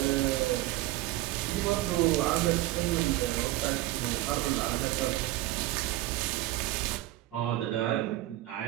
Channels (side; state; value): left; quieter; 16.7 dB